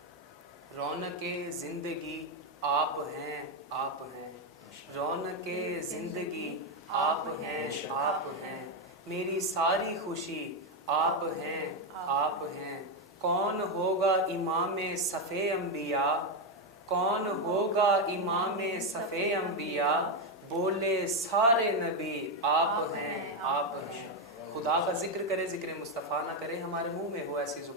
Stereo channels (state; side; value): normal; both; correlation 0.06